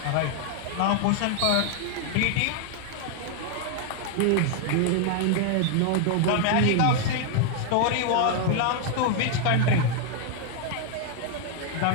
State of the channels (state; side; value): different; both; correlation 0.00